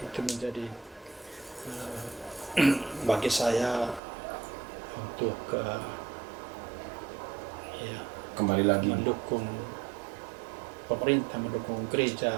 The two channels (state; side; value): drops out; left; at 4.0 s